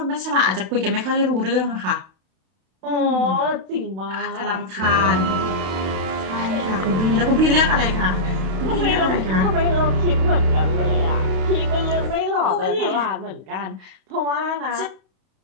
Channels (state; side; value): late; left; 32 ms